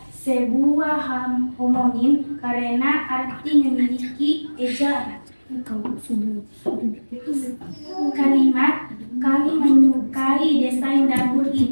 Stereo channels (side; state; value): both; inverted; correlation -1.00